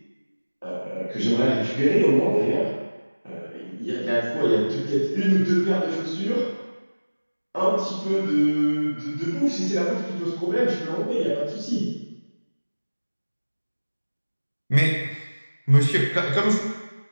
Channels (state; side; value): inverted; both; correlation -1.00